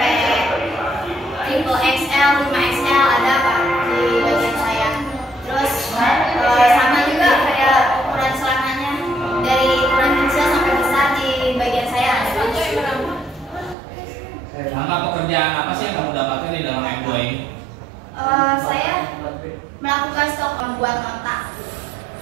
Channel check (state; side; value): drops out; left; at 13.8 s